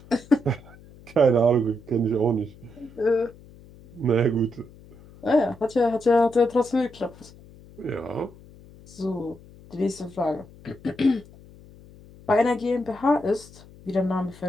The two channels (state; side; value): noise; left; hum, 22 dB below the sound